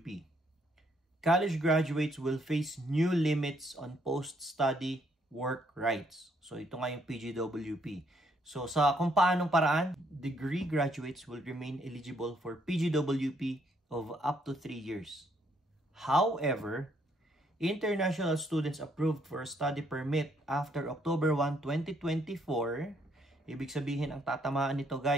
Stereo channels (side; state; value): both; normal; correlation 0.70